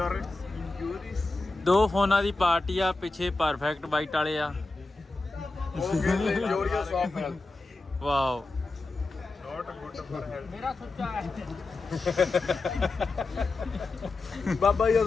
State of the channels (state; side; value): quieter; right; 3.4 dB